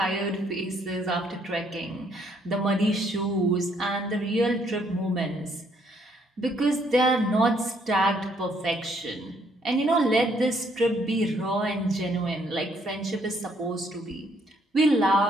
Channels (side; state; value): both; normal; correlation 0.68